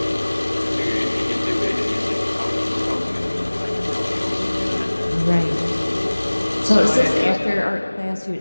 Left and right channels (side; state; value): both; inverted; correlation -1.00